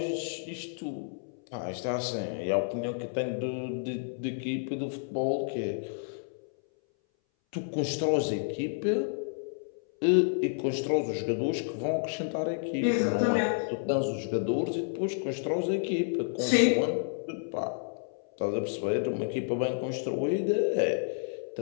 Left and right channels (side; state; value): right; silent; 58 dB below the other